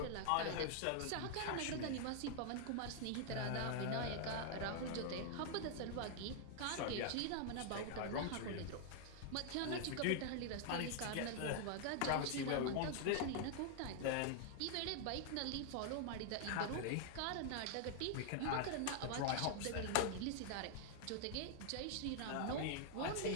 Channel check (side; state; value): both; different; correlation 0.00